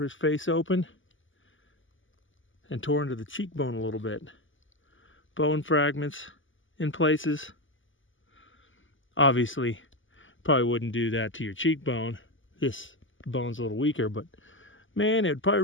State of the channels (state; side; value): late; right; 0.57 ms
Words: his face open and tore into the cheekbone a little bit. Bone fragments in places. Obviously, probably wouldn't do that to your cheekbone. This bone's a little weaker, but man, it would probably